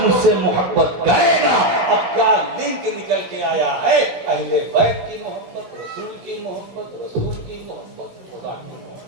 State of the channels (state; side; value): late; left; 16 ms